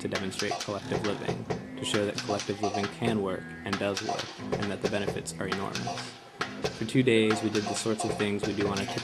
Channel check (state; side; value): identical; both; correlation 1.00